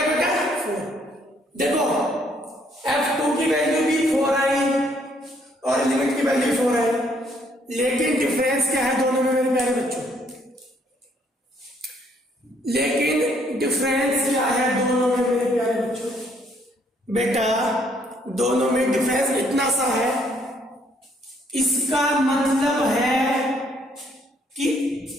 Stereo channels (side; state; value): both; normal; correlation 0.67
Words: बेटा? 4। देखो f2 की वैल्यू भी 4 आई और लिमिट की वैल्यू 4 आई, लेकिन डिफरेंस क्या है दोनों में मेरे प्यारे बच्चों? लेकिन डिफरेंस क्या है दोनों में मेरे प्यारे बच्चों? बेटा दोनों में डिफरेंस इतना सा है, इसका मतलब है कि